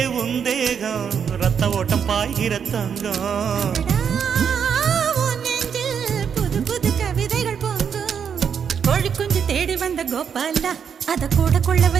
ரத்த ஓட்டம் பாய்கிற தங்கம் புது புது கவிதைகள் பொங்கும் கோழி குஞ்சு தேடி வந்த கோபால அத கூட கொள்ள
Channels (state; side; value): quieter; left; 7.4 dB